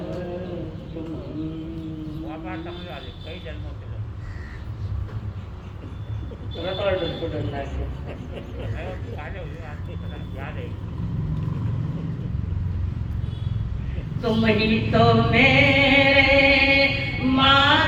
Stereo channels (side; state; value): both; identical; correlation 1.00